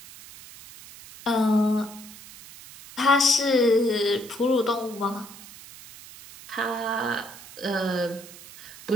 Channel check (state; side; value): noise; right; hiss, 18 dB below the sound